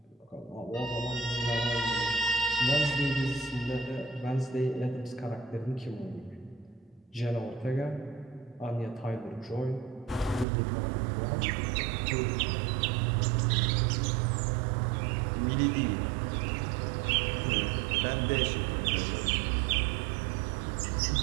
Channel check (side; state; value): left; drops out; at 10.5 s